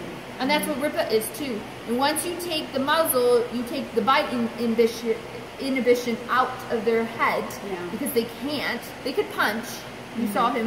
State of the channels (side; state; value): both; identical; correlation 1.00